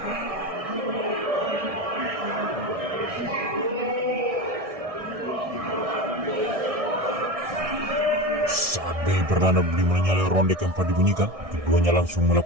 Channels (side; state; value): left; late; 1.6 ms